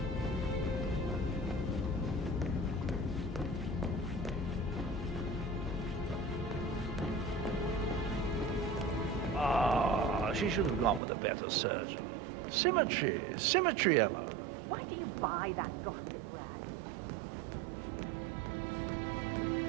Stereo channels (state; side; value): drops out; left; at 11.0 s